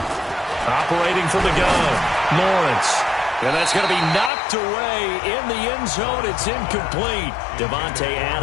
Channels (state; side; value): drops out; right; at 4.3 s